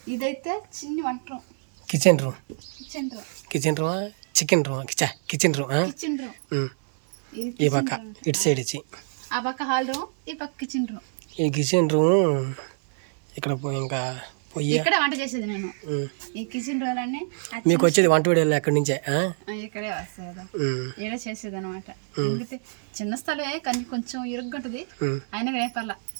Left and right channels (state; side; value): silent; left; 61 dB below the other